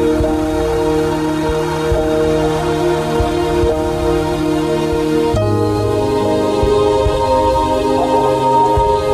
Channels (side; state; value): both; identical; correlation 1.00